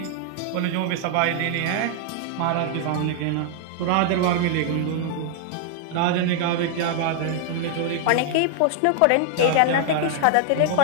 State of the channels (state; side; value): different; both; correlation -0.01